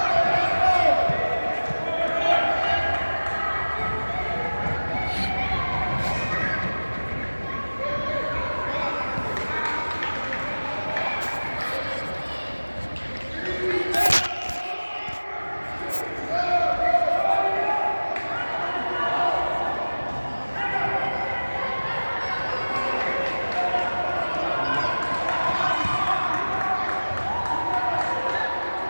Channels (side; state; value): both; inverted; correlation -1.00